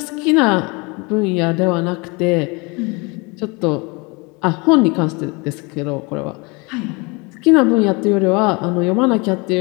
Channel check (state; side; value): quieter; right; 28.2 dB